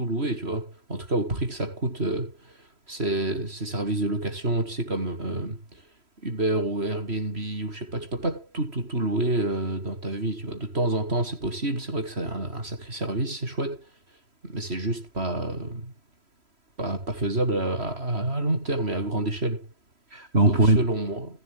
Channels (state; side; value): late; left; 3.1 ms